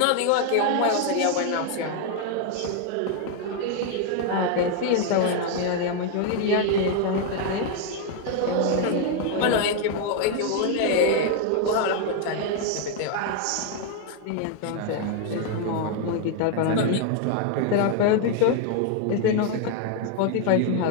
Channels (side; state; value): both; different; correlation 0.00